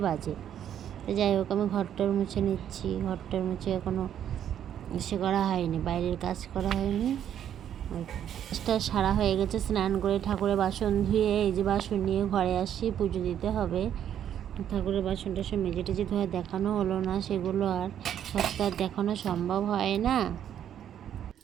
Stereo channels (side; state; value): left; quieter; 9.9 dB